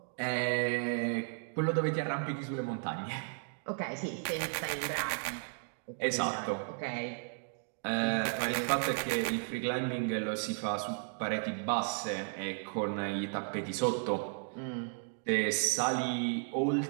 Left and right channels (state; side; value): silent; left; 55 dB below the other